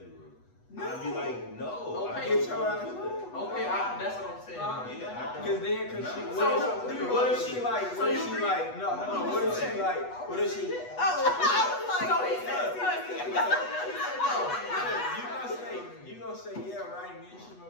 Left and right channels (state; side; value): late; right; 8.2 ms